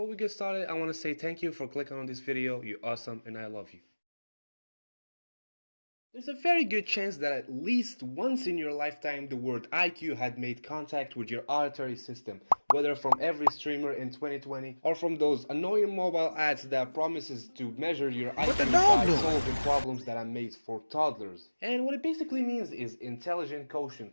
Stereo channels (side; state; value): both; inverted; correlation -1.00